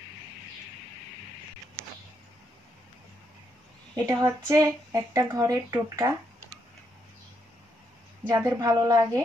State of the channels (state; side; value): normal; both; correlation 0.78